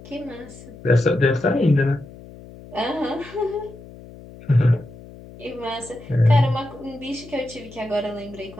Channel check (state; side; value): noise; left; hum, 18 dB below the sound